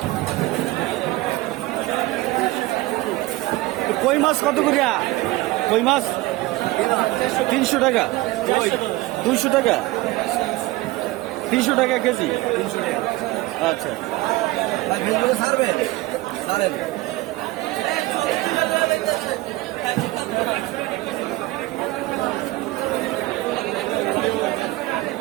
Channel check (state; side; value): quieter; left; 19.3 dB